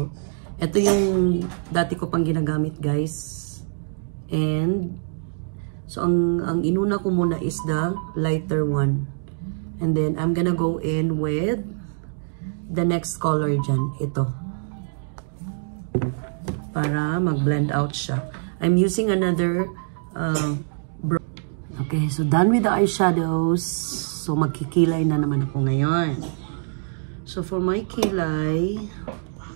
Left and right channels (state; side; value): silent; left; digital silence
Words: Ito yung dati ko pang ginagamit, guys. And, so, ang inuna ko muna is the lighter one. And then, I'm gonna go in with the next color dyan. Ito. Para mag-blend out siya. I'm using another okay, so done with the eyeshadows. So, magkikilay na naman ako ngayon. So, for my kilay,